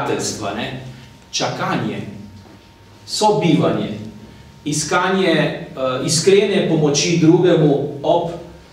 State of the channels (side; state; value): both; identical; correlation 1.00